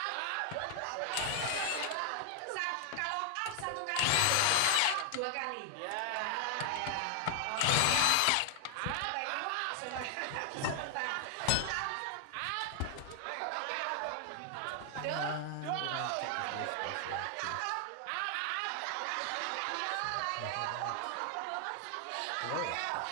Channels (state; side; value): different; both; correlation 0.00